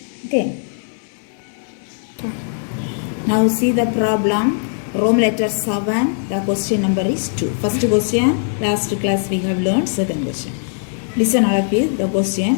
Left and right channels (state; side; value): silent; right; 63 dB below the other